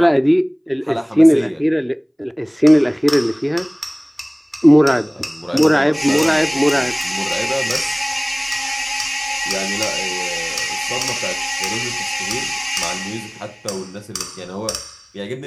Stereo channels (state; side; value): identical; both; correlation 1.00